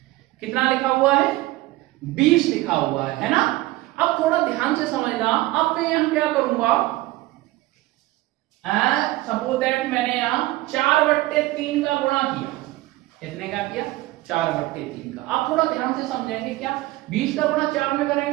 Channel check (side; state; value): left; quieter; 18.5 dB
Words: कितना लिखा हुआ है, 20 लिखा हुआ है ना। अब थोड़ा ध्यान से समझना। अब मैं यहां क्या करूंगा, सपोज दैट मैंने यहां 4/3 का गुणा किया। कितने का किया, 4/3 का। आप थोड़ा ध्यान से समझेंगे क्या, 20 का गुणा 4 में